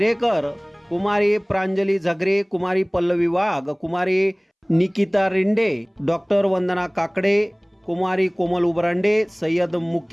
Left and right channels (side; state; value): both; identical; correlation 1.00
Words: कुमारी प्रांजली झगरे, कुमारी पल्लवी वाघ, कुमारी निकिता रिंडे, डॉक्टर वंदना काकडे, कुमारी कोमल उबरांडे, सय्यद